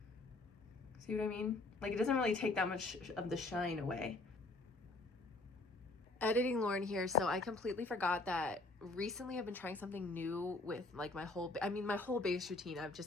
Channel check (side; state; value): right; quieter; 3.0 dB